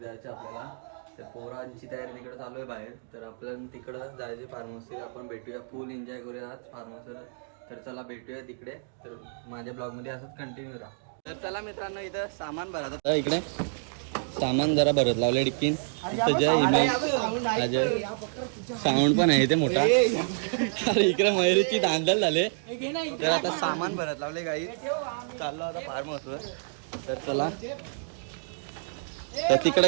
आपल्याला. तर पोरांची तयारी तिकडे चालू आहे बाहेर, तर आपल्याला तिकडं जायचे फार्म हाऊसला. आपण भेटूया, फुल एन्जॉय करूया आज फार्म हाऊसवर. तर चला भेटूया तिकडे. तर माझ्या ब्लॉगमध्ये असंच कंटिन्यू राहा. तर चला मित्रांनो, इथं सामान भरायचं इकडे. सामान जरा भरत लावले डिक्कीन. इथं जय इमेज अजय साऊंड पण आहे इथे मोठा. अरे इकडे मयुरीची धांदल झाले. तर आता सामान भरत लावले गाई. चाललो आता फार्म हाऊसवर. तर चला, तर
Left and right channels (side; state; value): left; silent; digital silence